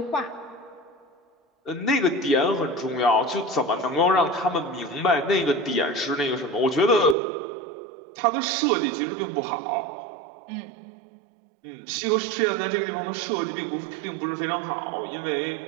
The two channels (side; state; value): left; drops out; at 7.2 s